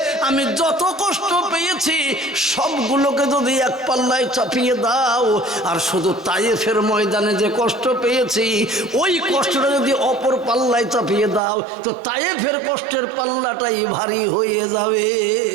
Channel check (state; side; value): drops out; left; at 11.4 s